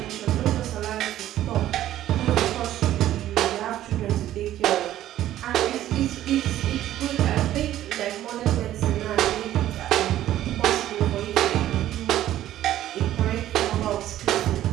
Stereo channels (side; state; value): left; quieter; 13.1 dB